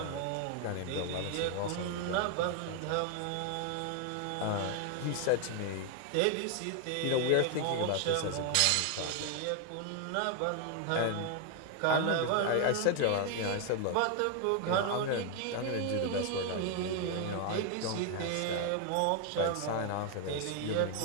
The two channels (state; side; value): different; both; correlation 0.01